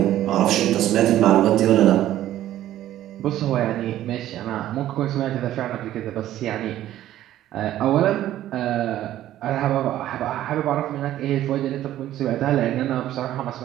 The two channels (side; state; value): left; quieter; 13.1 dB